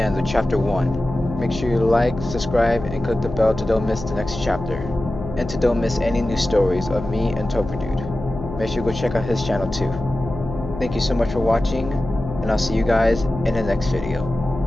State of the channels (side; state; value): left; noise; hum, 9 dB below the sound